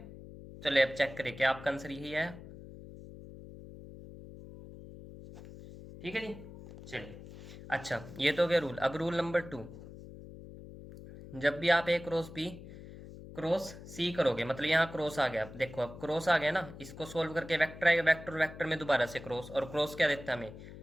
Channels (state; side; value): noise; left; hum, 15 dB below the sound